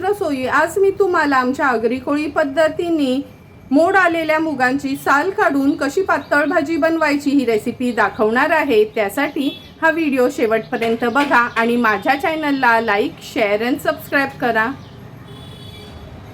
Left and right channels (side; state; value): both; identical; correlation 1.00